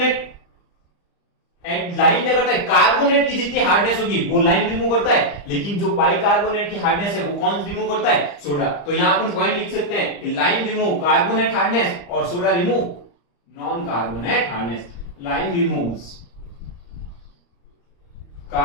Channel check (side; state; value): right; late; 35 ms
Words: एंड लाइम क्या करता है, कार्बोनेट की जितनी हार्डनेस होगी वो लाइम रिमूव करता है, लेकिन जो बाइकार्बोनेट की हार्डनेस है वो कौन रिमूव करता है, सोडा। तो यहां अपन पॉइंट लिख सकते हैं कि लाइम रिमूव कार्बोनेट हार्डनेस और soda remove non carbonate hardness. Lime removes